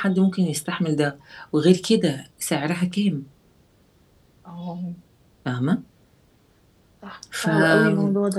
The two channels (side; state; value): both; identical; correlation 1.00